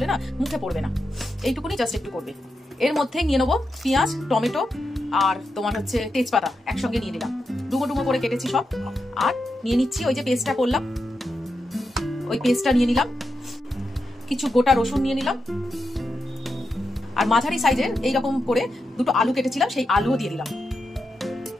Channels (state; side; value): normal; both; correlation 0.87